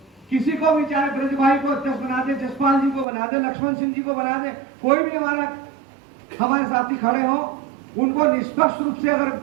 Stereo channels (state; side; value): drops out; left; at 3.1 s